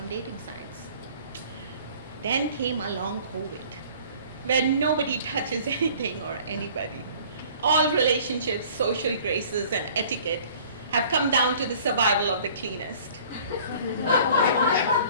dating sites. Then came along COVID, where nobody touches anything or anybody. All relationships, social graces, and etiquette have come down to the survival of the cleanest.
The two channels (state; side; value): inverted; both; correlation -0.51